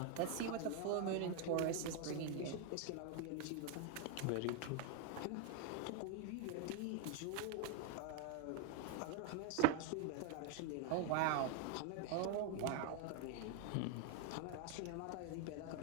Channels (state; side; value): different; both; correlation 0.01